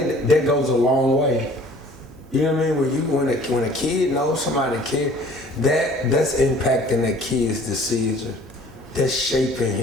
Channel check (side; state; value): right; noise; hum, 23 dB below the sound